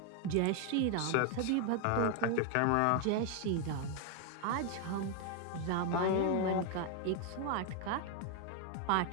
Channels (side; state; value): both; different; correlation 0.01